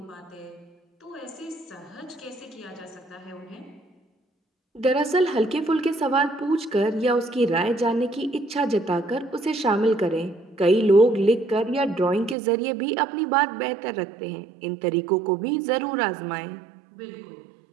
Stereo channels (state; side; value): drops out; left; at 12.4 s